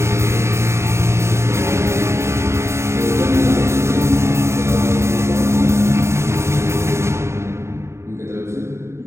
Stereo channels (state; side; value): late; left; 0.13 ms